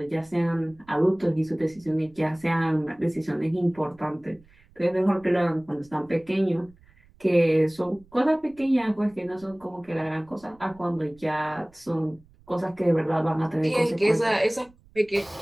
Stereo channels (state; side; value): noise; right; rumble, 29 dB below the sound